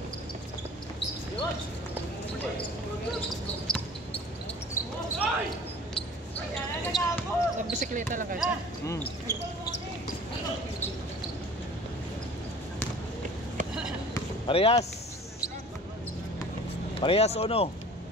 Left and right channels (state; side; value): normal; both; correlation 0.44